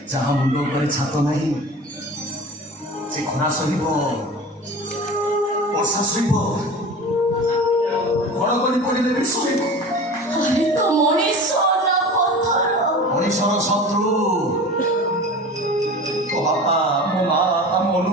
ଯାହା ମୁଣ୍ଡ ଉପରେ ଛାତ ନାହିଁ ସେ ଖରା ସହିବ, ବର୍ଷା ସହିବ, ଘଡ଼ଘଡ଼ି ପଡ଼ିଲେ ବି ସହିବ। ଆରେ ତ ମଣିଷ ନା ପଥର? ମଣିଷର ଶତ୍ରୁ। ମୋ ବାପା ମୋ ମା ଆମ ଅନୁ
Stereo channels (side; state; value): both; normal; correlation 0.36